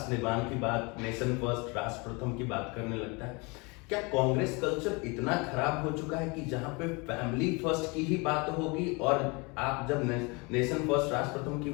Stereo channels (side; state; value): right; quieter; 28.6 dB